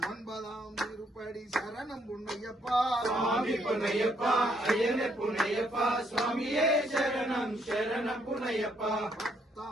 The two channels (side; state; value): both; normal; correlation 0.71